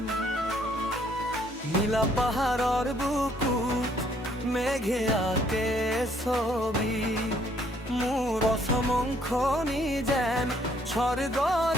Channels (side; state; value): both; normal; correlation 0.65